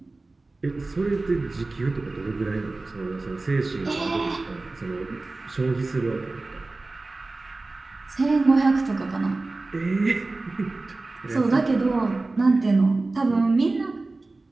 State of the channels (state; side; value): quieter; left; 3.3 dB